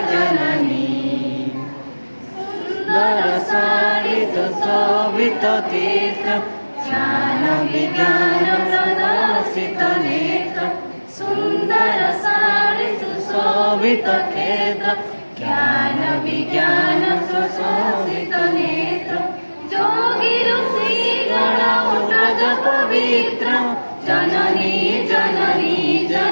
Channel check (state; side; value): inverted; both; correlation -1.00